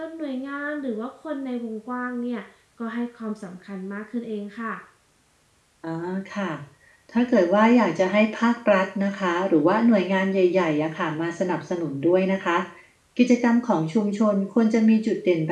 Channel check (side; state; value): both; identical; correlation 1.00